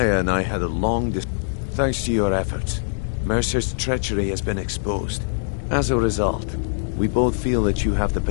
and I had a long Thanks to your efforts, Mercer's treachery has been exposed. As a result, we both feel that you have the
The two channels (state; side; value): silent; right; 64 dB below the other